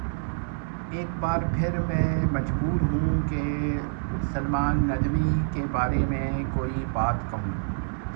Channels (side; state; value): left; silent; digital silence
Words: ایک بار پھر میں مجبور ہوں کہ سلمان ندوی کے بارے میں کوئی بات کہوں۔